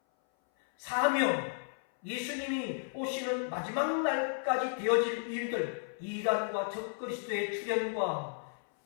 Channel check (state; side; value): silent; right; 56 dB below the other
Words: 사명, 예수님이 오시는 마지막 날까지 되어질 일들, 이단과 적그리스도의 출현과